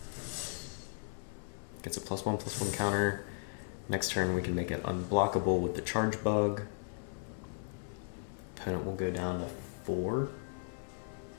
Gets a +1/+1 counter. Next turn we can make it unblockable with the charge bug. Opponent will go down to 4.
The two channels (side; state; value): right; silent; 54 dB below the other